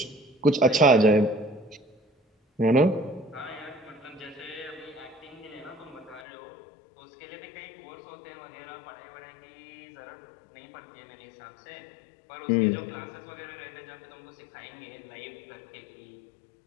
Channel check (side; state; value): right; drops out; at 6.2 s